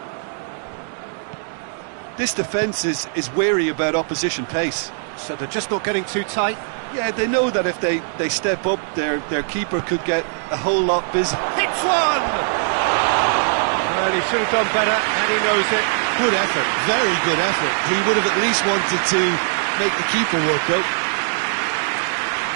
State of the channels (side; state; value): left; silent; digital silence